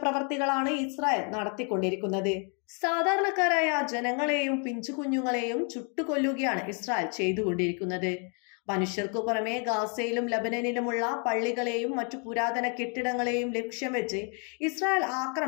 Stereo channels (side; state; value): right; quieter; 38.7 dB